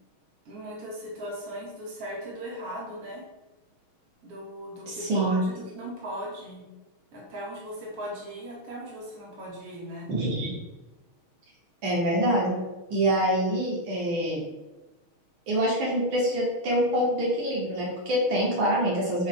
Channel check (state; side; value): late; left; 6.3 ms